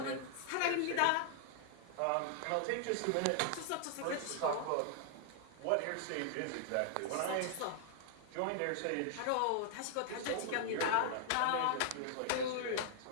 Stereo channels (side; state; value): both; different; correlation 0.00